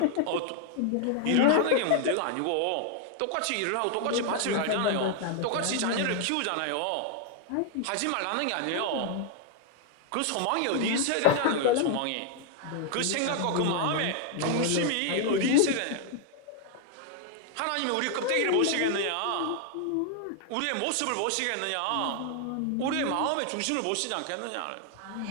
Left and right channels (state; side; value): different; both; correlation 0.00